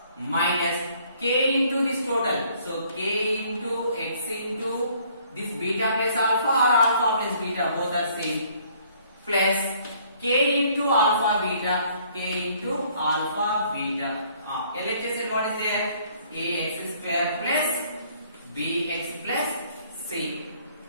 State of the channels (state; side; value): inverted; both; correlation -0.61